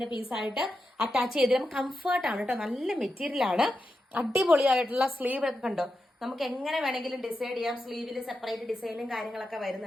പീസായിട്ട് അറ്റാച്ച് ചെയ്തിട്ട് കംഫർട്ടാണ് കേട്ടോ. നല്ല മെറ്റീരിയൽ ആണ്. അടിപൊളിയായിട്ടുള്ള സ്ലീവ് ഒക്കെ കണ്ടോ, നമുക്ക് എങ്ങനെ വേണമെങ്കിലും ഡിസൈഡ് ചെയ്യാം. സ്ലീവിൽ സെപ്പറേറ്റ് ഡിസൈനും കാര്യങ്ങളൊക്കെ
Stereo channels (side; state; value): both; normal; correlation 0.88